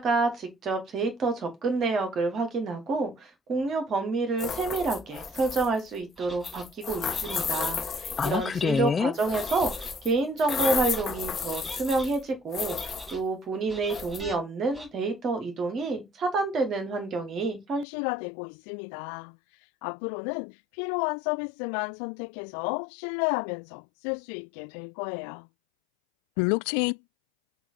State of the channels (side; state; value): right; drops out; at 17.9 s